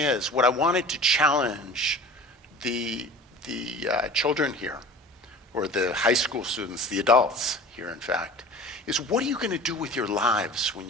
what I wanted to challenge the children here, or the high school students, the adults here in fact, is what are you going to do with your lives when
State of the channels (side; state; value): both; normal; correlation 0.39